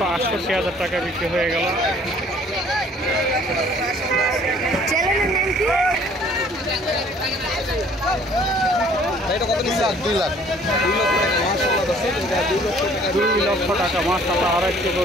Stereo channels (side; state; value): both; normal; correlation 0.56